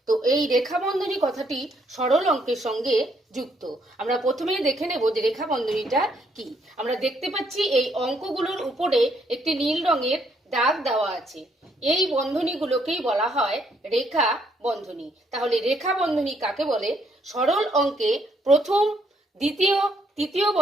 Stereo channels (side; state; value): both; normal; correlation 0.71